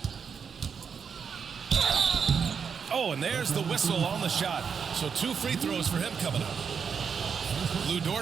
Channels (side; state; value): left; quieter; 6.5 dB